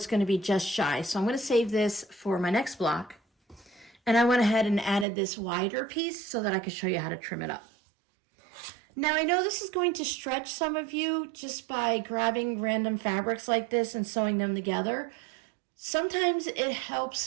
going to be just shy. So I'm going to save this for my next block. And I went ahead and added this wider piece so that I could show you how to trim it up. Now, I know this is going to stretch some of you just by grabbing random fabrics like this and sewing them together. Sometimes it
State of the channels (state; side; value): drops out; left; at 5.1 s